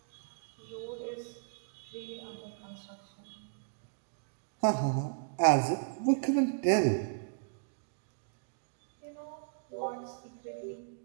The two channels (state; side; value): silent; left; digital silence